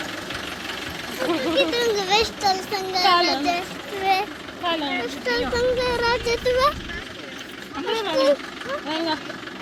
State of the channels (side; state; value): both; identical; correlation 1.00